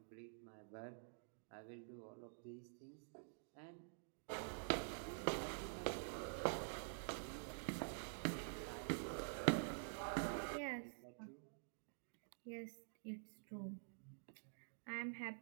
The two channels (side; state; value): left; silent; digital silence